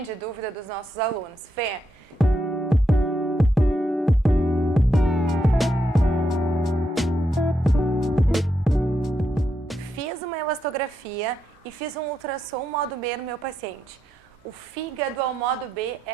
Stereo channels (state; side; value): normal; both; correlation 0.81